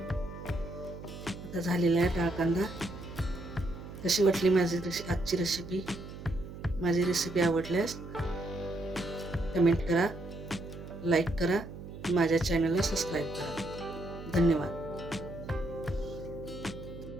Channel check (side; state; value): right; noise; hum, 12 dB below the sound